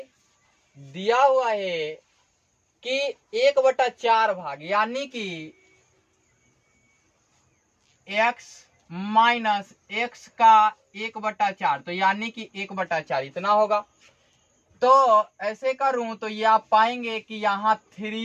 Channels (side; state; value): both; identical; correlation 1.00